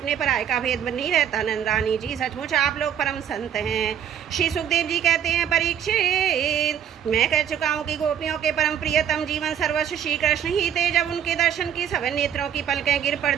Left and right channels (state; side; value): quieter; left; 9.1 dB